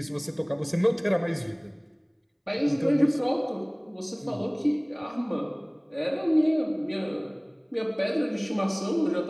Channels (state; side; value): identical; both; correlation 1.00